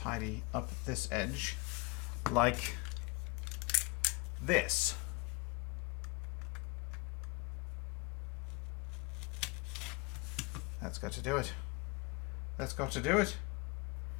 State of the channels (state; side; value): quieter; right; 27.4 dB